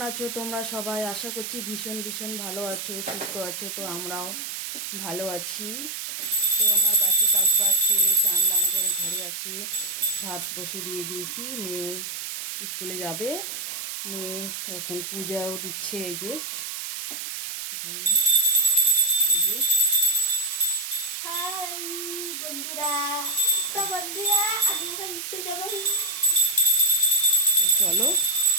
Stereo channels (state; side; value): noise; right; hiss, 6 dB below the sound